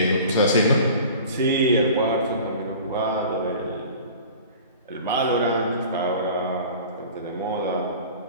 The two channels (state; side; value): inverted; both; correlation -0.42